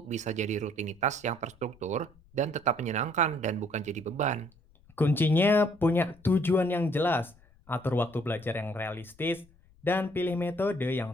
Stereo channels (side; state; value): left; noise; rumble, 28 dB below the sound